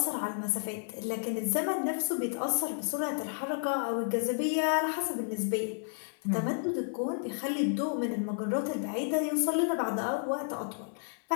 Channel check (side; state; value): right; silent; 57 dB below the other